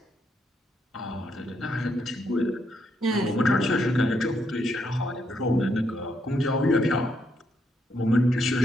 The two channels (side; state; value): both; normal; correlation 0.77